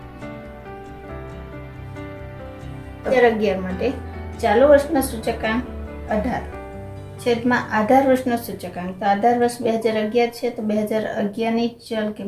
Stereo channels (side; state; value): both; identical; correlation 1.00